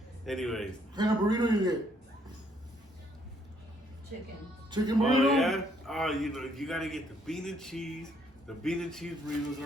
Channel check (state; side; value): normal; both; correlation 0.68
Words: Anyways. What kind of burrito you get? Chicken burrito? Oh, yeah? Oh, you gotta get the bean and cheese. The bean and cheese burritos